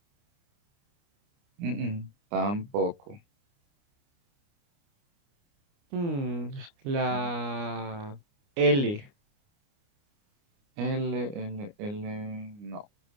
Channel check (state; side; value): late; left; 29 ms